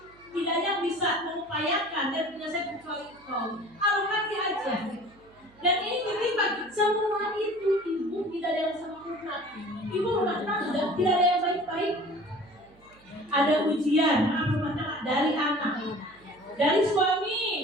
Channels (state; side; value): noise; right; hum, 29 dB below the sound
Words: tidak ada yang bisa mengupayakan dan menyelesaikan kecuali Engkau. Alokasi aja. Dan ini titipan semua itu ibu tidak ada yang sempurna. Ibu rumah tangga tidak ada yang baik-baik. Ada ujian rumah tangga dari anak, dari